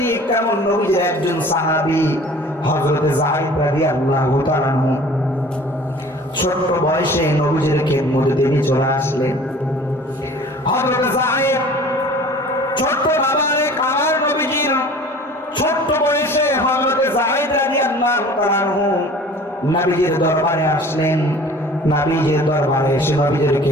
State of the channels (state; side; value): normal; both; correlation 0.46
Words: তেমন নবীজির একজন সাহাবী হযরত যায়েদ রাদিয়াল্লাহু তাআলা আনহু ছোট বয়সে নবীজির খেদমতে তিনি চলে আসলেন। হযরত যায়েদ ছোট বাবারে আমার নবীজির ছোট বয়সে হযরত যায়েদ রাদিয়াল্লাহু তাআলা আনহু নবীজির দরবারে আসলেন। নবীজির দরবারে এসে নবীজির